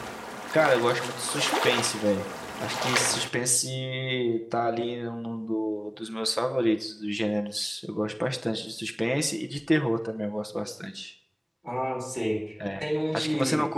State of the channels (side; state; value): both; identical; correlation 1.00